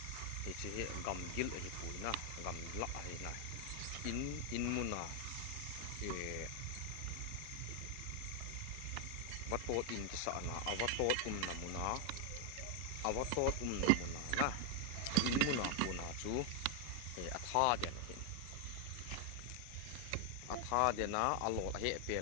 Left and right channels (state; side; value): different; both; correlation 0.00